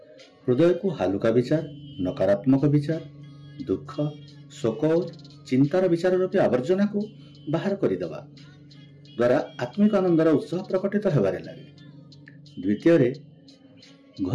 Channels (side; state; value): both; identical; correlation 1.00